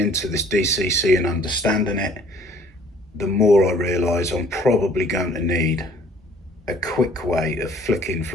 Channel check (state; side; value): normal; both; correlation 0.55